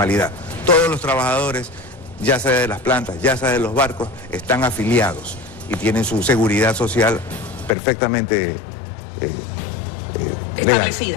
Todos los trabajadores, ya sea de las plantas, ya sea de los barcos, están afiliados y tienen su seguridad social perfectamente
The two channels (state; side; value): drops out; right; at 7.7 s